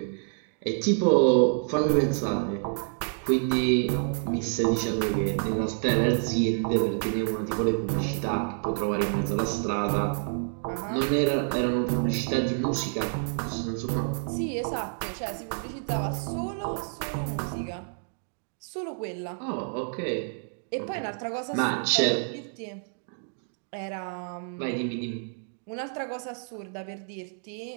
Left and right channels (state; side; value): silent; left; 55 dB below the other